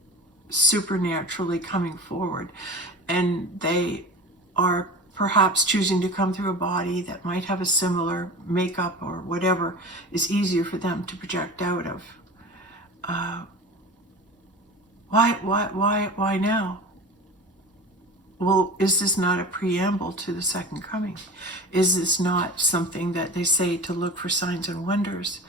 supernaturally coming forward, and they are perhaps choosing to come through a body that might have a similar makeup or whatever is easier for them to project out of. Why now? Well, is this not a preamble to the second coming? Is this not something that they say to look for signs and wonders?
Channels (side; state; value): both; normal; correlation 0.34